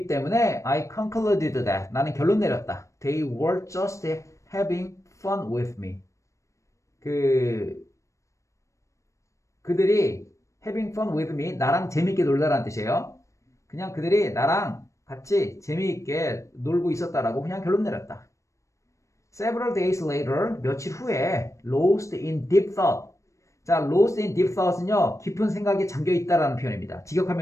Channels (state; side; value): late; right; 0.15 ms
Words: 때문에 I concluded that. 나는 결론 내렸다. They were just having fun with me. 그들이 having fun with me, 나랑 재밌게 놀다라는 뜻이에요. 그냥 그들이 나랑 같이 재미있게 놀고 있었다라고 그냥 결론 내렸다. Several days later, 며칠 후에 lost in deep thought. 자, lost in deep thought은요, 깊은 생각에 잠겨 있다라는 표현입니다.